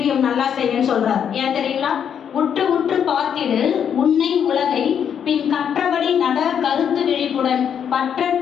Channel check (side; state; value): right; quieter; 8.2 dB